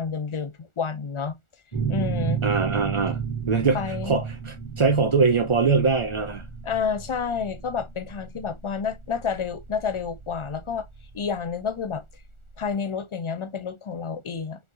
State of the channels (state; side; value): late; right; 1.4 ms